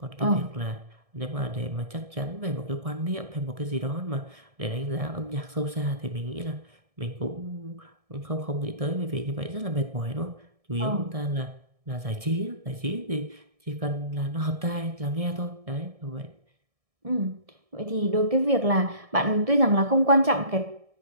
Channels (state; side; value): late; left; 1.6 ms